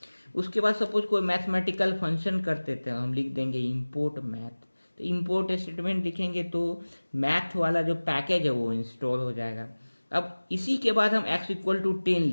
उसके बाद सपोज कोई मैथमेटिकल फंक्शन करते थे, हम लिख देंगे इंपोर्ट मैथ। तो इंपोर्ट स्टेटमेंट लिखेंगे तो मैथ वाला जो पैकेज है वो इंस्टॉल हो जाएगा। अब इसी के बाद हम x=10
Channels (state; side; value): inverted; both; correlation -1.00